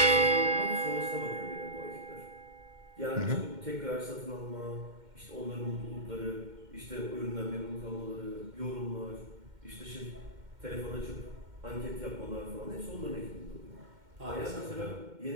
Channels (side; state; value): left; late; 2.1 ms